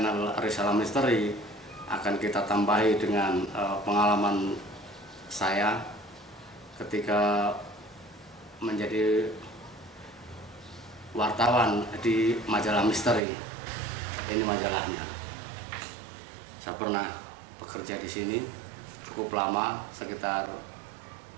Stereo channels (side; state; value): left; drops out; at 13.2 s